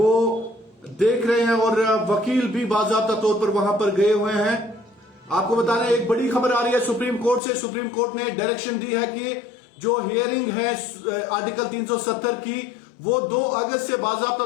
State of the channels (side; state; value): right; drops out; at 7.4 s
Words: देख रहे हैं और वकील भी बाकायदा तौर पर वहां पर गए हुए हैं। आपको बता दें, एक बड़ी खबर आ रही है सुप्रीम कोर्ट से। सुप्रीम कोर्ट ने डायरेक्शन दी है कि जो हियरिंग है आर्टिकल 370 की, वो 2 अगस्त से बाकायदा